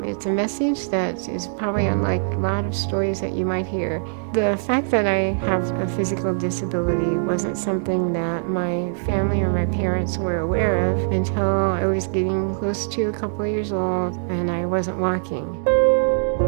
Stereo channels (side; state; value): left; silent; 63 dB below the other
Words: a message that is probably unlike a lot of stories that you might hear. The fact that I have a physical disability wasn't something that my family or my parents were aware of until I was getting close to a couple of years old and I wasn't walking.